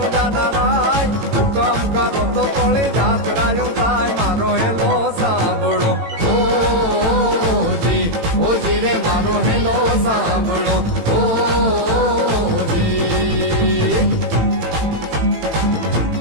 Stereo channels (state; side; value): late; left; 18 ms